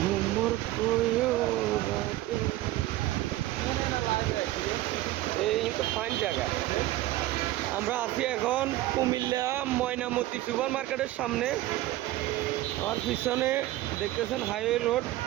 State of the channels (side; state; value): left; quieter; 16.2 dB